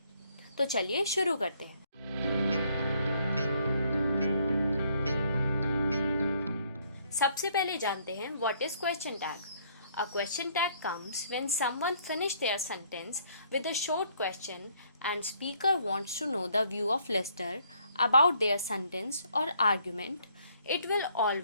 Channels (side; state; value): both; inverted; correlation -0.66